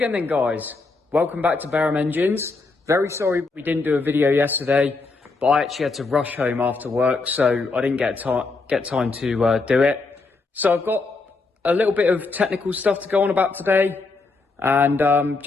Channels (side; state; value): right; quieter; 3.8 dB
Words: then guys, welcome back to Barham Engines. Very sorry we didn't do a video yesterday, but I actually had to rush home after work, so I didn't get time to do it. So I've got a little bit of technical stuff to go on about today, and